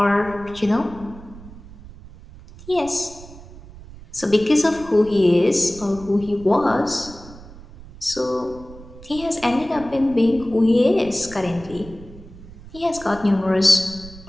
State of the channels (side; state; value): right; noise; rumble, 18 dB below the sound